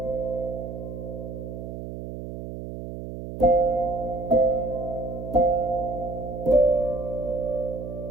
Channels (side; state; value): right; noise; hum, 8 dB below the sound